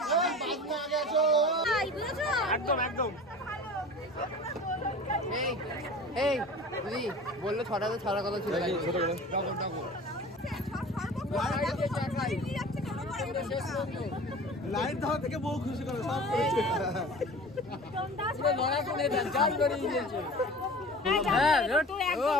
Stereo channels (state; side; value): normal; both; correlation 0.39